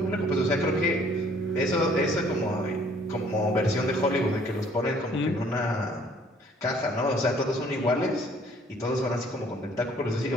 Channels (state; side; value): normal; both; correlation 0.59